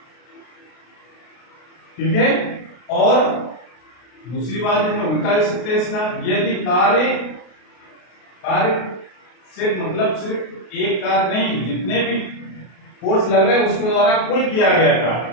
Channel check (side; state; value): right; late; 33 ms